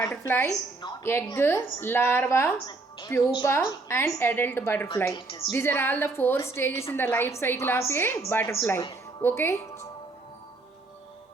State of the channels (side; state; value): left; quieter; 3.4 dB